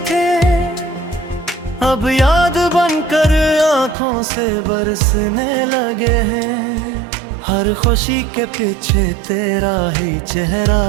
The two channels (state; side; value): drops out; left; at 4.0 s